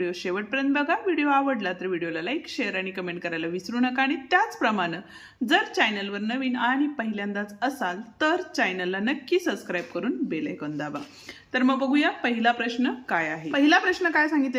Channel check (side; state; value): both; identical; correlation 1.00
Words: शेवटपर्यंत बघा. व्हिडिओ आवडला तर व्हिडिओला लाईक, शेअर आणि कमेंट करायला विसरू नका. आणि त्याचप्रमाणे जर चॅनलवर नवीन आणि पहिल्यांदाच असाल तर चॅनलला नक्की सबस्क्राईब करून बेल आयकॉन दाबा. तर मग बघूया पहिला प्रश्न काय आहे. पहिला प्रश्न काय